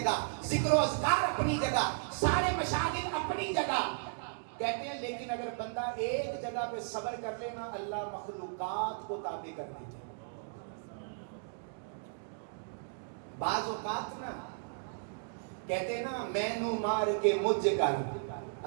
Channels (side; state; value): left; silent; digital silence